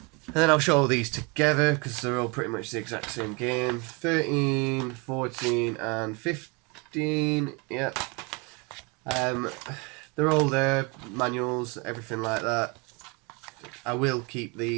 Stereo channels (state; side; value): quieter; left; 28.9 dB